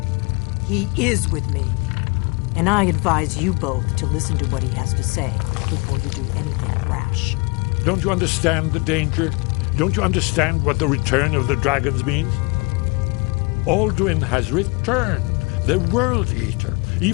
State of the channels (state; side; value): quieter; right; 28.5 dB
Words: He is with me. And I advise you both to listen to what he has to say before you do anything rash. Don't you understand the danger? Don't you understand what the return of the dragons means? Alduin has returned, the World Eater.